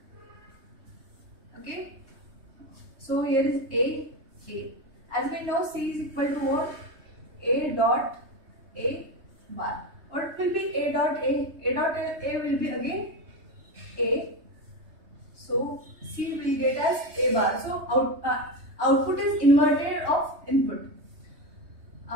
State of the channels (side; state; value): left; late; 3.2 ms